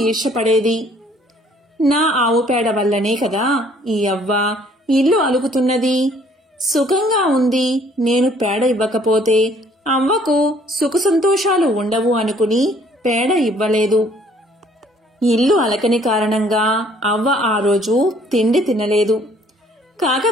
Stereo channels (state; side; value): normal; both; correlation 0.60